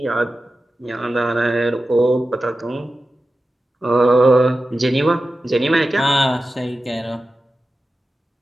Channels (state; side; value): normal; both; correlation 0.93